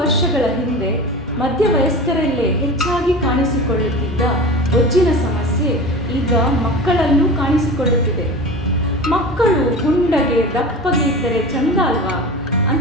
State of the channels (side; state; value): both; normal; correlation 0.33